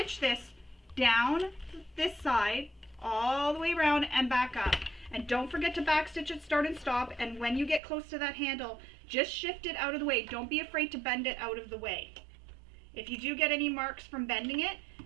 this down this side all the way around and back up. And don't forget to back stitch at start and stop, and when you get close to that handle, just shift it out of the way. Don't be afraid to bend it out of the way. If you do get any marks from bending it,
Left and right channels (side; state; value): left; drops out; at 7.8 s